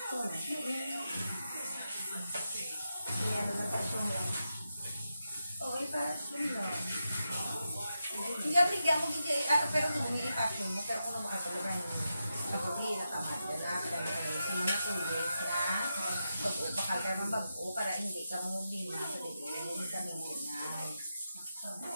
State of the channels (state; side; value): inverted; both; correlation -0.88